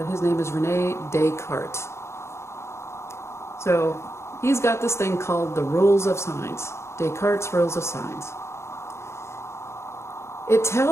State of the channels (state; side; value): late; right; 0.13 ms